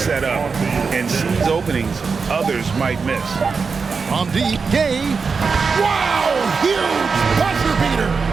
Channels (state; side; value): quieter; left; 5.1 dB